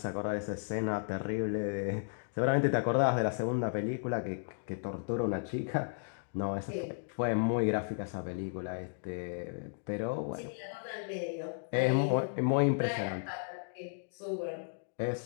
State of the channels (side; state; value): right; silent; digital silence